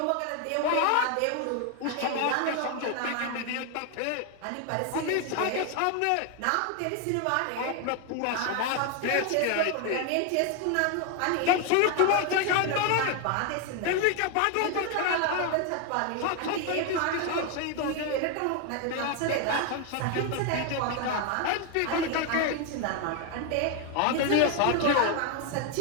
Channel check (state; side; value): different; both; correlation 0.01